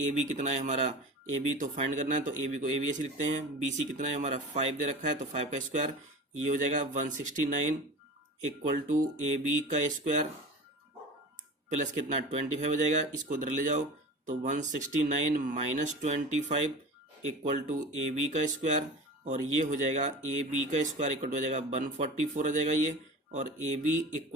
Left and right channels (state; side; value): normal; both; correlation 0.34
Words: AB कितना है हमारा, AB तो फाइंड करना है तो AB को AB ऐसे लिखते हैं, BC कितना है हमारा 5 दे रखा है तो 5 का स्क्वायर, ये हो जाएगा 169 इक्वल टू AB का स्क्वायर प्लस कितना 25 हो जाएगा, इसको उधर ले जाओ तो 169 माइनस 25 इक्वल टू AB का स्क्वायर और ये हो जाएगा AB का स्क्वायर इक्वल टू आ जाएगा 144 आ जाएगा ये, और AB